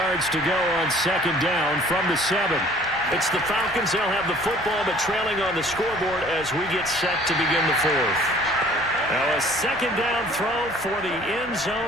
to go on 2nd down from the 7. It's the Falcons. They'll have the football, but trailing on the scoreboard as we get set to begin the 4th. Now a 2nd down throw for the end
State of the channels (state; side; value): normal; both; correlation 0.53